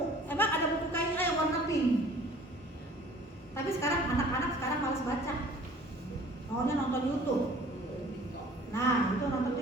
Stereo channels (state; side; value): normal; both; correlation 0.51